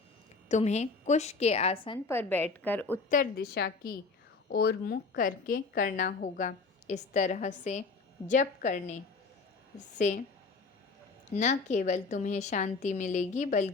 तुम्हें कुश के आसन पर बैठकर उत्तर दिशा की ओर मुख करके करना होगा। इस तरह से जप करने से न केवल तुम्हें शांति मिलेगी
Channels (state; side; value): quieter; right; 4.2 dB